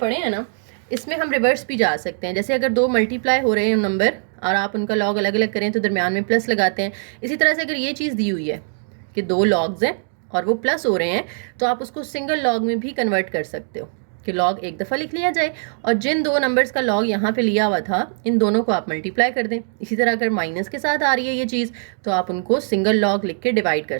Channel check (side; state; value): left; silent; digital silence